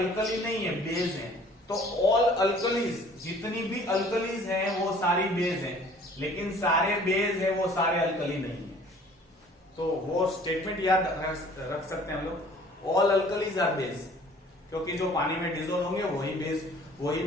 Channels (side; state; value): both; normal; correlation 0.52